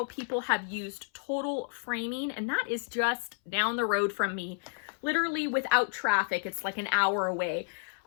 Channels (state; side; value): silent; right; 57 dB below the other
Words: people have used Total Framing, and that is just down the road from me. Literally without traffic, it's like an hour away.